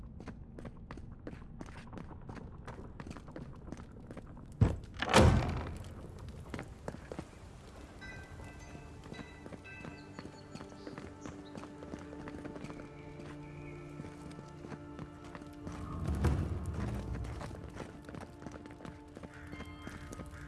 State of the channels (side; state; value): both; identical; correlation 1.00